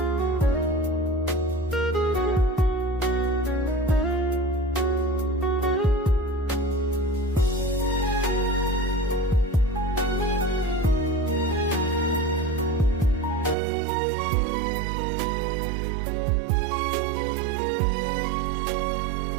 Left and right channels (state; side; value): drops out; left; at 13.6 s